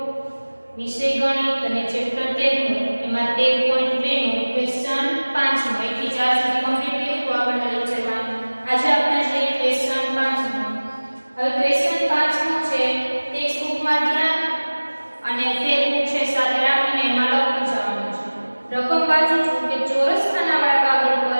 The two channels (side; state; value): both; inverted; correlation -1.00